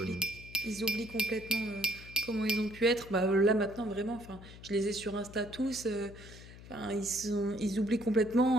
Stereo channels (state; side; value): noise; left; hum, 17 dB below the sound